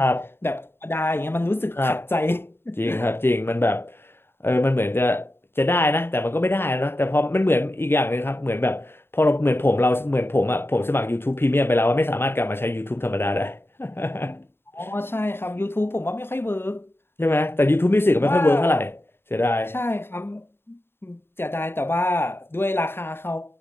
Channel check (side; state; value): right; late; 0.11 ms